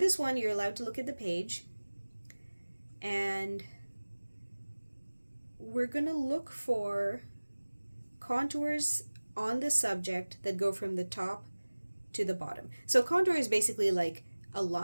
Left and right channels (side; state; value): both; inverted; correlation -1.00